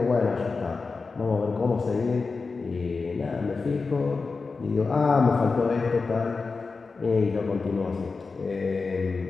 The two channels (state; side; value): quieter; right; 4.3 dB